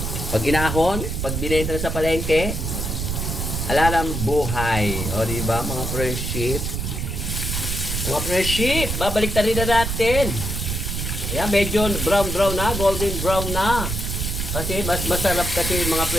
Pag inahon, pag binenta na sa palengke, alalang buhay. O, diba, mga friendship? Mga friendship, babalik na rin na natin. Ayan, medyo brown na, golden brown na. Kasi mas masarap kasi mga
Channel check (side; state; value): right; noise; rumble, 3 dB below the sound